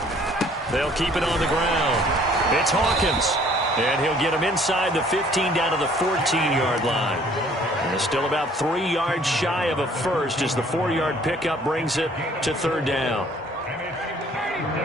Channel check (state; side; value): normal; both; correlation 0.57